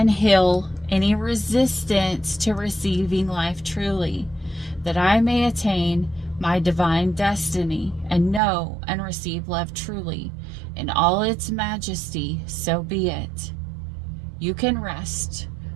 heal any resistance to receiving life truly, that I may attain my divine destiny and know and receive love truly in all its majesty, so be it. You can rest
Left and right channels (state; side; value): drops out; left; at 8.4 s